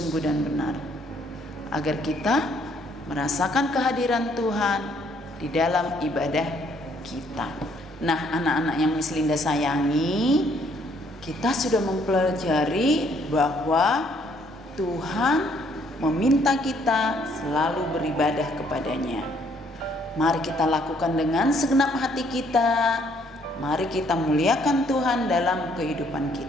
dan benar, agar kita merasakan kehadiran Tuhan di dalam ibadah kita. Nah, anak-anak yang Miss Linda sayangi, kita sudah mempelajari bahwa Tuhan meminta kita selalu beribadah kepadanya. Mari kita lakukan dengan segenap hati kita. Mari kita muliakan Tuhan dalam kehidupan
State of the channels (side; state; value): both; normal; correlation 0.66